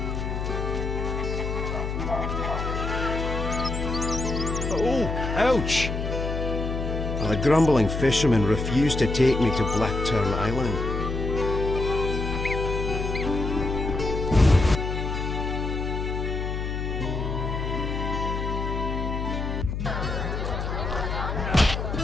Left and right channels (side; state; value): left; noise; hum, 3 dB below the sound